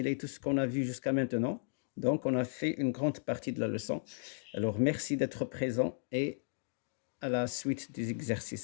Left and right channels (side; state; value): right; silent; digital silence